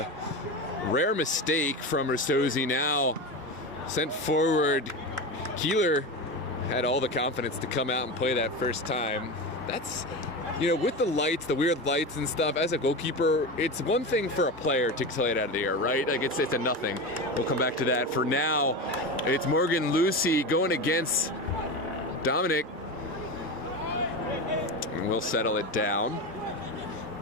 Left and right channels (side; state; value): both; normal; correlation 0.23